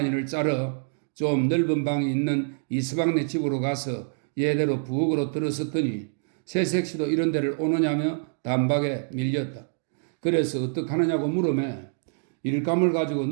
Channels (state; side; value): silent; left; 61 dB below the other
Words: 짜러 좀 넓은 방이 있는 이서방네 집으로 가서 예대로 부엌으로 들어섰더니 새색시도 이런 데를 오느냐며 단박에 밀렸다. 그래서 어떡하느냐고 물으매 일감을 가지고